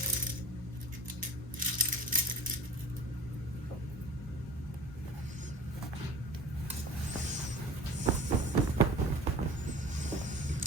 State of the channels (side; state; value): both; normal; correlation 0.41